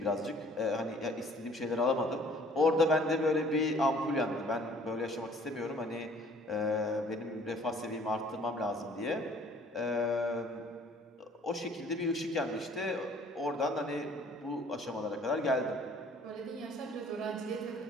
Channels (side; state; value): both; normal; correlation 0.55